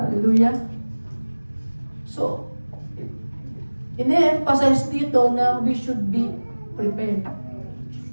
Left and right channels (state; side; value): inverted; both; correlation -1.00